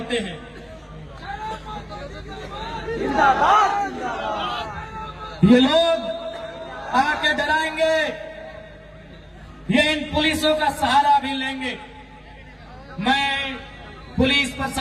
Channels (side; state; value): both; identical; correlation 1.00